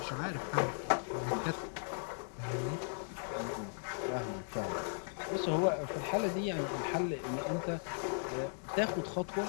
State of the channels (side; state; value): right; silent; digital silence